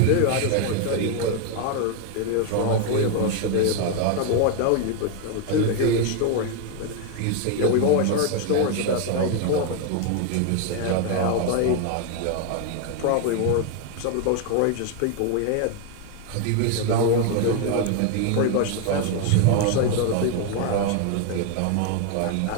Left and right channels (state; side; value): different; both; correlation 0.01